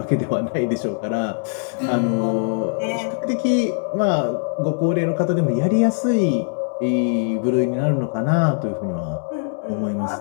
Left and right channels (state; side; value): silent; right; digital silence